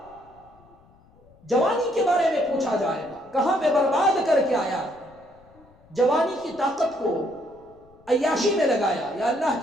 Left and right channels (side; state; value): left; noise; rumble, 29 dB below the sound